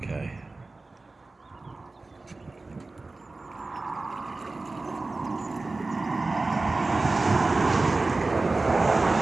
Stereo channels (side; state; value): left; quieter; 3.4 dB